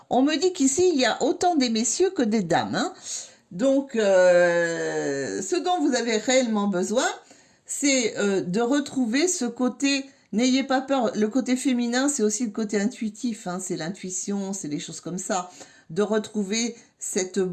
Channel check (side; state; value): both; identical; correlation 1.00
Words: on me dit qu'ici, il y a autant des messieurs que des dames. Hein. Donc, ce dont vous avez réellement besoin, c'est de retrouver ce côté... N'ayez pas peur, le côté féminin, c'est aussi le côté intuitif. Hein. C'est l'intuition, c'est des choses comme ça. De retrouver cette